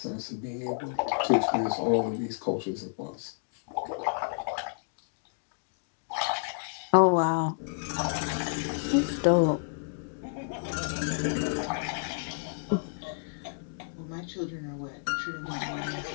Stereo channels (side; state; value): right; silent; digital silence